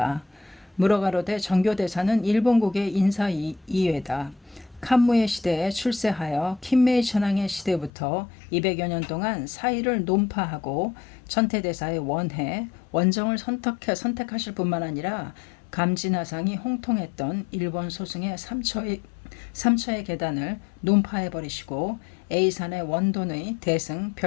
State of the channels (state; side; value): drops out; right; at 7.9 s